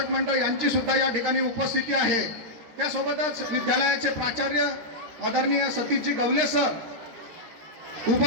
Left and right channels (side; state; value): left; late; 13 ms